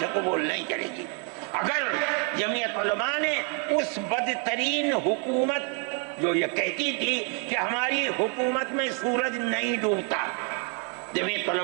قبول نہیں کرے گی۔ اگر جمعیت علماء نے اس بدترین حکومت جو یہ کہتی تھی کہ ہماری حکومت میں سورج نہیں ڈوبتا، جمعیت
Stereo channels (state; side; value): quieter; left; 38.2 dB